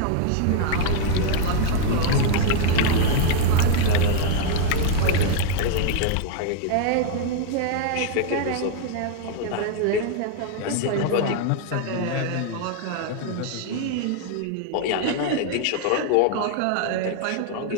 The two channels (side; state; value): both; different; correlation 0.00